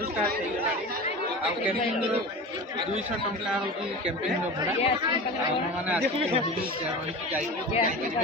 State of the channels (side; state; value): both; normal; correlation 0.31